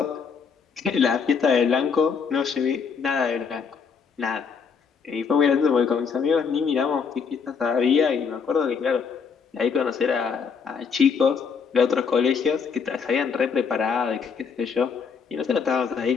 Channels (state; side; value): quieter; right; 6.0 dB